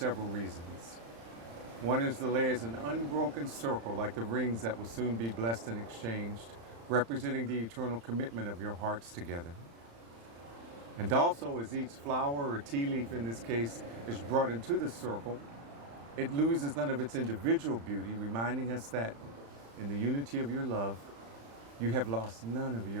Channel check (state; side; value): late; left; 35 ms